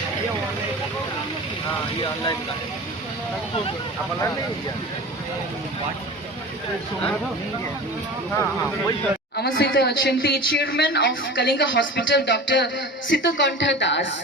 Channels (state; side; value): normal; both; correlation 0.35